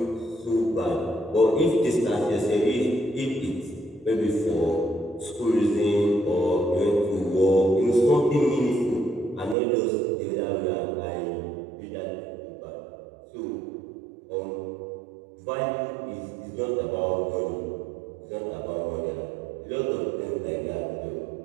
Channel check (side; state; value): left; drops out; at 9.6 s